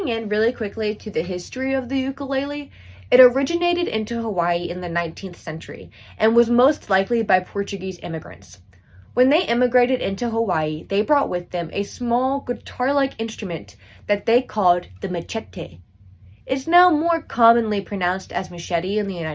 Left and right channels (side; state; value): both; identical; correlation 1.00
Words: in really quickly to the history of the ukulele, it originated into Hawaii in the 19th century and was most likely by Portuguese immigrants. When they immigrated into Hawaii, they brought with them a small guitar-like instrument that they called the machete. It's now more commonly pronounced as machete in the